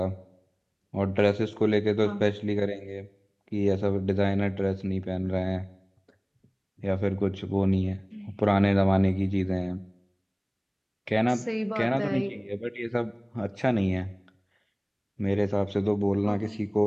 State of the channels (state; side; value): identical; both; correlation 1.00